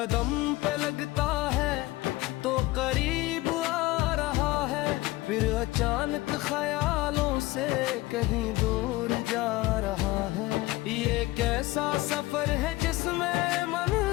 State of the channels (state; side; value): quieter; right; 19.0 dB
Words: पे लगता है तो करीब आ रहा है, फिर अचानक ख्यालों से कहीं दूर जा रहा है। ये कैसा सफर है जिसमें